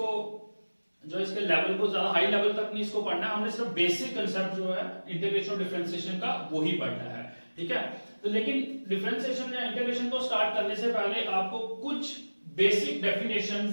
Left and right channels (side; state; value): both; inverted; correlation -1.00